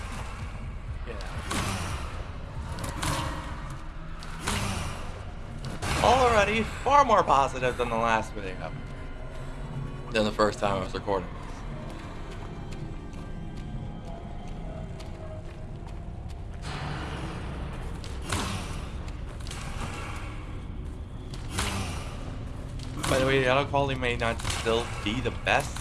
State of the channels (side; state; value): both; identical; correlation 1.00